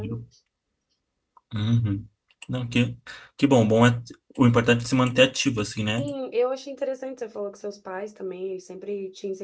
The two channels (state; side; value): identical; both; correlation 1.00